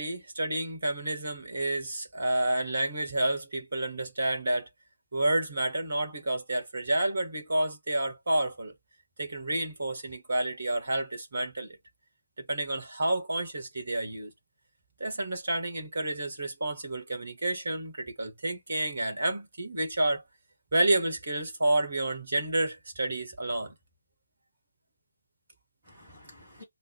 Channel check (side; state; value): both; inverted; correlation -0.93